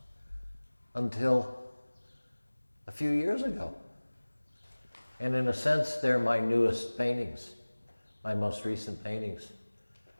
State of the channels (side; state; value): both; inverted; correlation -1.00